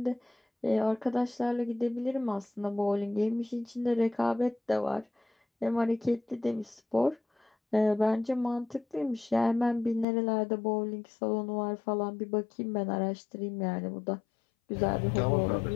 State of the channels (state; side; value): drops out; right; at 10.1 s